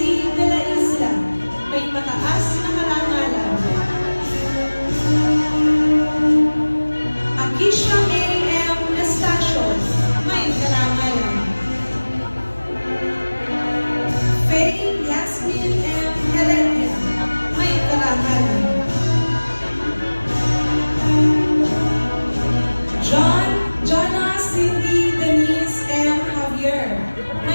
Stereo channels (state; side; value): inverted; both; correlation -1.00